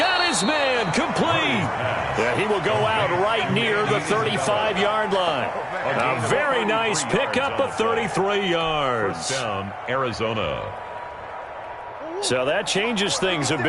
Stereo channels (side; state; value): both; identical; correlation 1.00